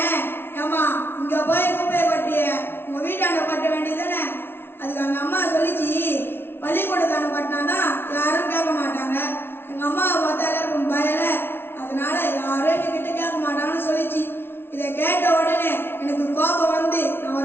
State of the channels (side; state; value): right; late; 0.11 ms